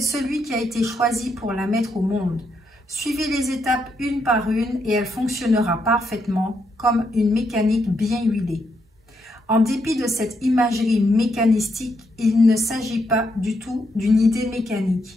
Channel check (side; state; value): both; normal; correlation 0.79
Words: celui qui a été choisi pour la mettre au monde. Suivez les étapes une par une et elle fonctionnera parfaitement comme une mécanique bien huilée. En dépit de cette imagerie mécanistique, il ne s'agit pas du tout d'une idée